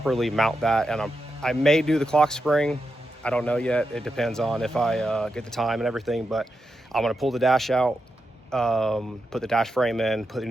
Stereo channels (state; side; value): normal; both; correlation 0.87